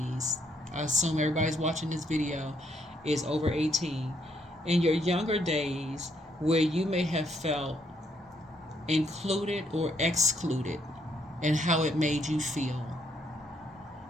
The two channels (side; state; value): both; normal; correlation 0.72